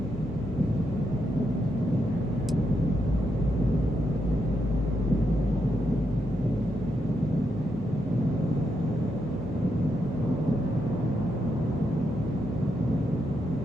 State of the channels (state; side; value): normal; both; correlation 0.82